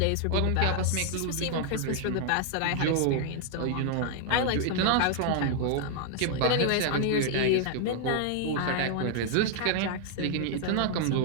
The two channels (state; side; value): different; both; correlation -0.01